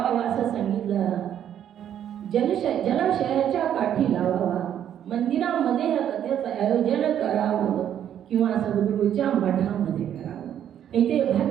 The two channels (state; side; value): quieter; left; 10.0 dB